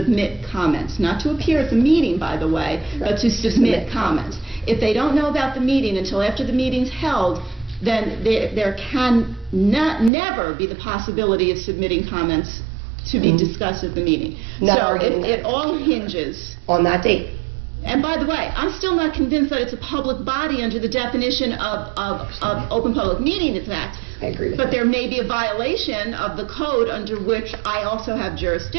comments, not to appear at the meeting, by the way, but to submit comments. If they don't know about the meeting until after the meeting's held, then there can never be the possibility of submitting comments to be discussed at the meeting. So it all hinges. On that date. And by the way, I'm still not convinced that it's a public body under the definition of Open Public Meetings Act. I agree with But you. there may be a violation of the code under which I also have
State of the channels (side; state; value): left; drops out; at 10.1 s